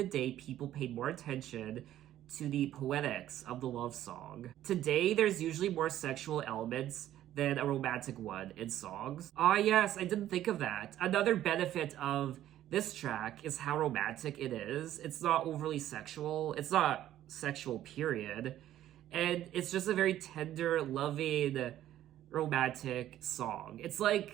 day, people paid more attention to the poetics of the love song. Today, there's usually more sexual elements than a romantic one in songs." Ah yes, I didn't think of that. Another benefit of this track is how romantic it is. It's not overly sexual. It's not sexual, period. And it's just a very tender, loving, romantic song. It's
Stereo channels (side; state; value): left; quieter; 12.6 dB